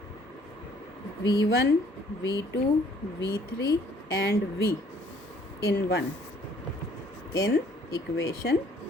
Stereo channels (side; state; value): both; normal; correlation 0.60